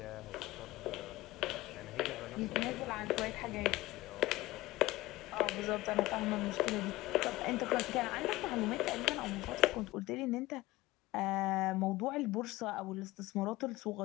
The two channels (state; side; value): quieter; right; 18.8 dB